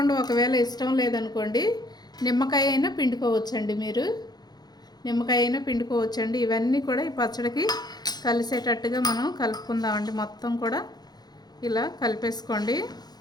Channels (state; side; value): late; right; 0.19 ms